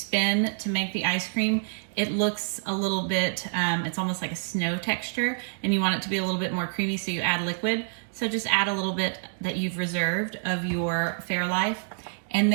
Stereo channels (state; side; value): silent; left; digital silence